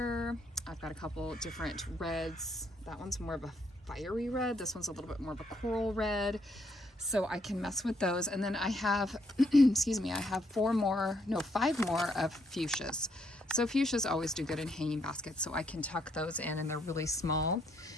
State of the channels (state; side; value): normal; both; correlation 0.72